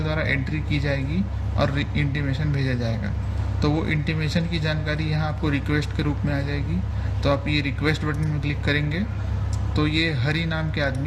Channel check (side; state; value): both; identical; correlation 1.00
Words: द्वारा एंट्री की जाएगी और इंटीमेशन भेजा जाएगा। तो वो इंटीमेशन की जानकारी यहाँ आपको रिक्वेस्ट के रूप में आ जाएगी। तो आप ये रिक्वेस्ट बटन में क्लिक करेंगे तो ये हरी नाम के